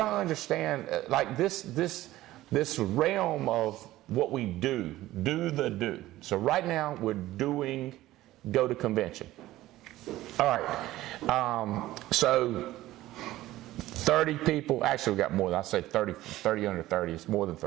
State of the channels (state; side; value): quieter; left; 16.0 dB